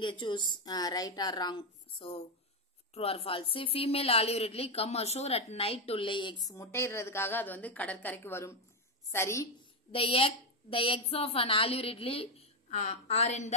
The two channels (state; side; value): normal; both; correlation 0.06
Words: choose right or wrong. So true or false. Female olive ridley come ashore at night to lay eggs, முட்டையிடுறதுக்காக அது வந்து கடற்கரைக்கு வரும். சரி. The eggs of an olive ridley are in